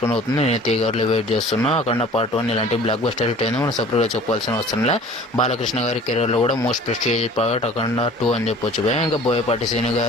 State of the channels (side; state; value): both; normal; correlation 0.46